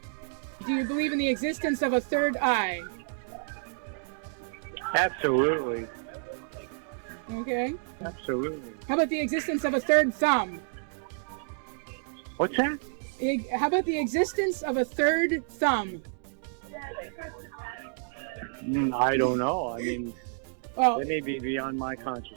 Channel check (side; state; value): left; silent; digital silence